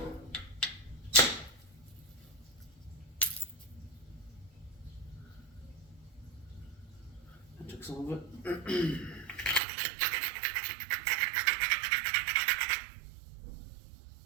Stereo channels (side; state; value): left; drops out; at 9.6 s